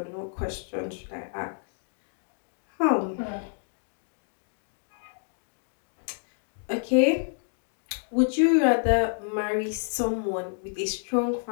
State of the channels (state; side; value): silent; right; digital silence